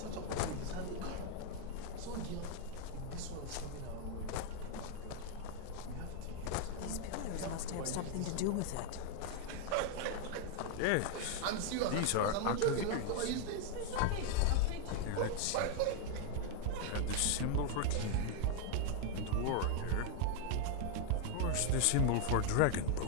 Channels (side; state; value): both; different; correlation 0.00